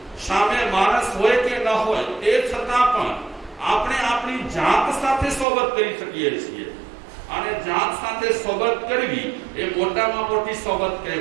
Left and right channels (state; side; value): drops out; left; at 5.5 s